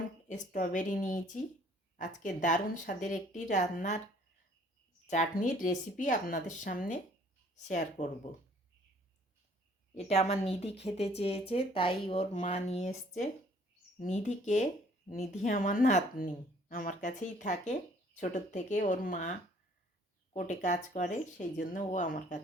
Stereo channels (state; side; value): normal; both; correlation 0.58